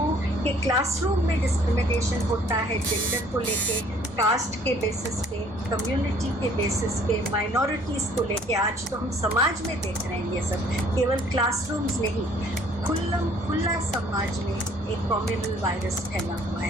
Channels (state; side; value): normal; both; correlation 0.58